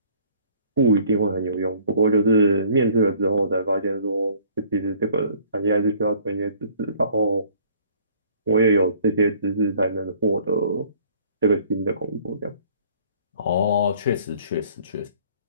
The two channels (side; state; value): both; inverted; correlation -0.56